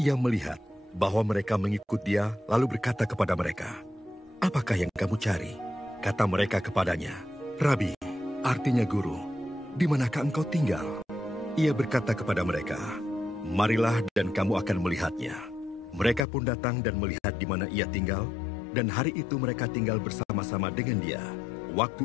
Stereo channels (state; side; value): drops out; right; at 16.2 s